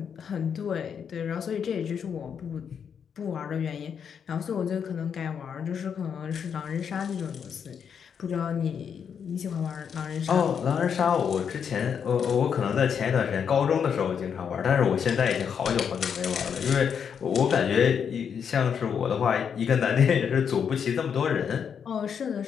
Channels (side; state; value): right; quieter; 7.3 dB